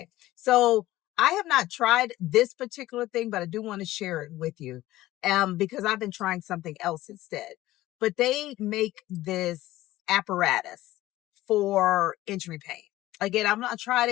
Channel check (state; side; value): quieter; right; 16.2 dB